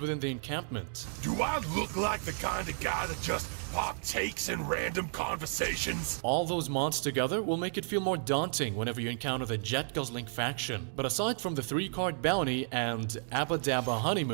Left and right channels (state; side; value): silent; left; digital silence